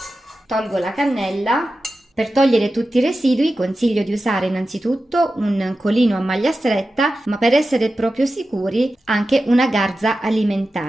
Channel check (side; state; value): both; normal; correlation 0.93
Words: Tolgo la cannella. Per togliere tutti i residui consiglio di usare innanzitutto un colino a maglia stretta, ma per essere proprio sicuri anche una garza